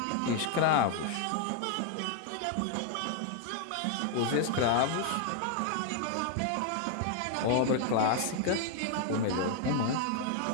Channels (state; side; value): different; both; correlation 0.00